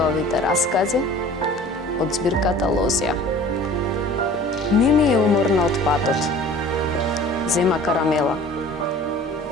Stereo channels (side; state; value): both; normal; correlation 0.46